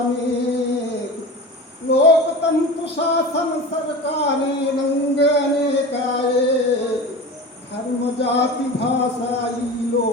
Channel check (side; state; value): both; normal; correlation 0.32